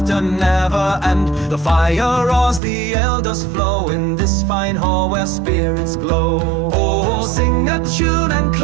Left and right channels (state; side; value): drops out; left; at 2.6 s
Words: never end. The fire roars, the ale does flow in this fine hall where spirits glow. Oh, sing a tune and